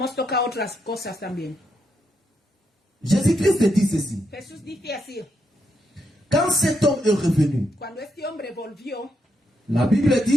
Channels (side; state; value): both; normal; correlation 0.81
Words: tocado otras cosas también. Jésus-Christ dit ceci. Jesús dice así, Quand cet homme est revenu, cuando este hombre volvió, la Bible